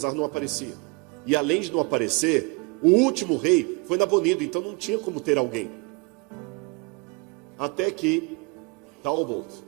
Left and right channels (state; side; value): quieter; left; 29.4 dB